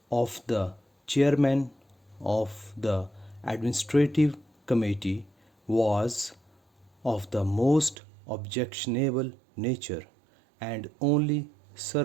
of the chairman of the administrative committee was of the most objectionable nature and only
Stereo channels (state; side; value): drops out; left; at 8.0 s